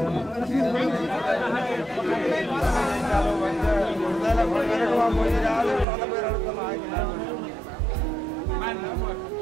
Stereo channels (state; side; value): drops out; left; at 5.9 s